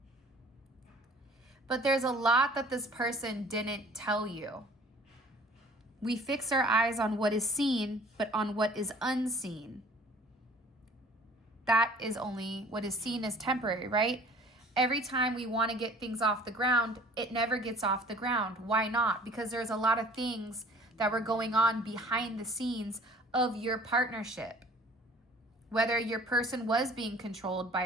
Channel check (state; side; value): normal; both; correlation 0.51